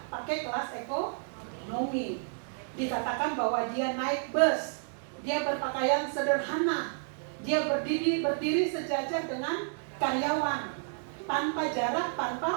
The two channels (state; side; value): silent; left; digital silence